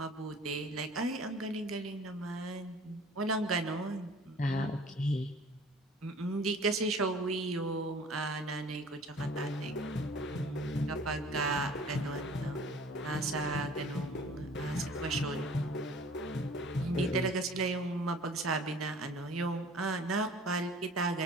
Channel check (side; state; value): both; normal; correlation 0.48